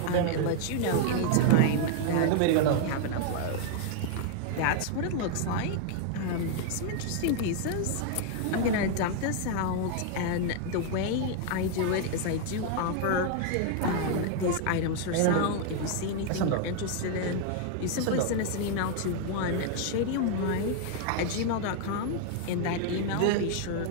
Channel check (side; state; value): both; different; correlation 0.00